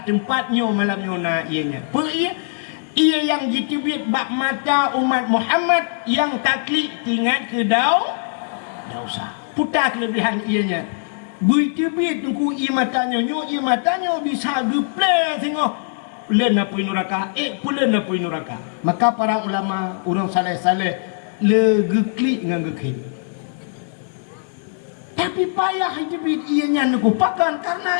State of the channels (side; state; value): right; silent; digital silence